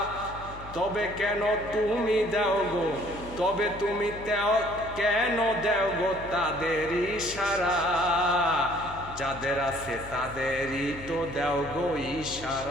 তবে কেন তুমি দাও গো, তবে তুমি কেন দাও গো তাদের ইশারা। যাদের আছে তাদেরই তো দেও গো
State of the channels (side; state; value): left; noise; hum, 15 dB below the sound